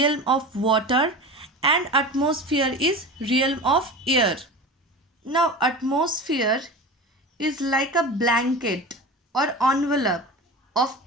of water, and atmosphere is realm of air. Now atmosphere is like a blanket or envelope of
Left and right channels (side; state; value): both; normal; correlation 0.32